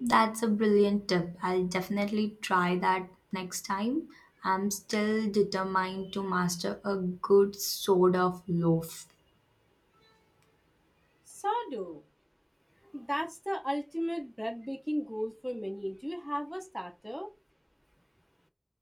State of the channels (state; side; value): identical; both; correlation 1.00